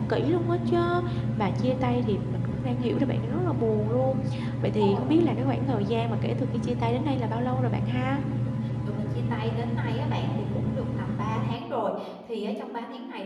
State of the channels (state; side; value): identical; both; correlation 1.00